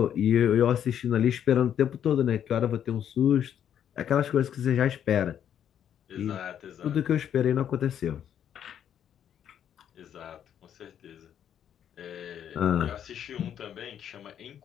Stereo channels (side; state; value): right; quieter; 9.5 dB